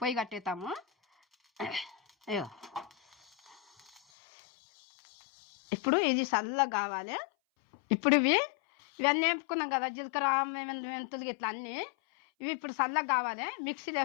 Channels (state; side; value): drops out; right; at 4.0 s